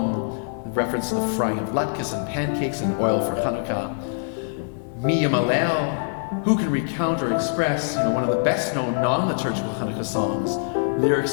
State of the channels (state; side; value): silent; right; 63 dB below the other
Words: in reference to the frying of latkes and pancakes and oil for Chanukah. Mi Yamalel, who can recount or express, one of the best-known non-liturgical Chanukah songs,